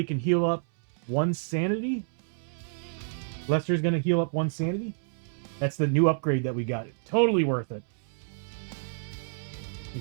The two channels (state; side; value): silent; left; 59 dB below the other